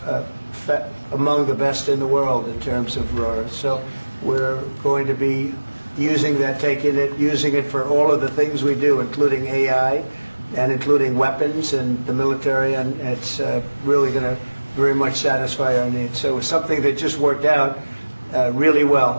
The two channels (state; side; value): inverted; both; correlation -1.00